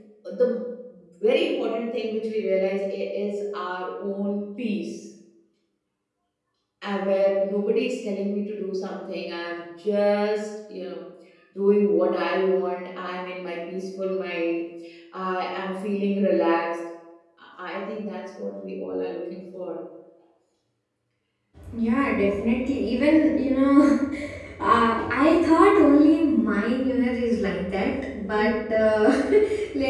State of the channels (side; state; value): both; identical; correlation 1.00